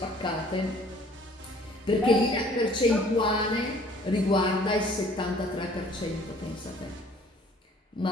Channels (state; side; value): normal; both; correlation 0.55